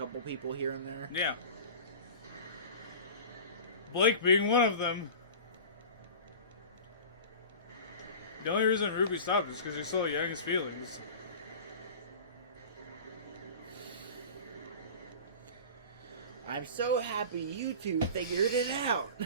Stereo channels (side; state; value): both; inverted; correlation -0.36